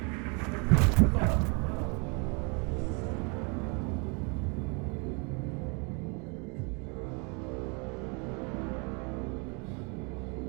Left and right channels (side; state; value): left; quieter; 32.8 dB